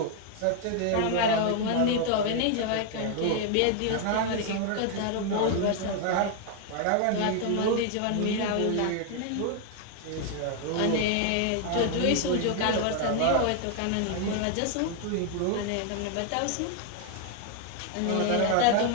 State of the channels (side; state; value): both; different; correlation 0.00